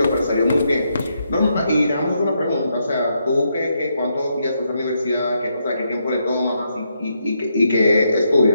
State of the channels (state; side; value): inverted; both; correlation -0.79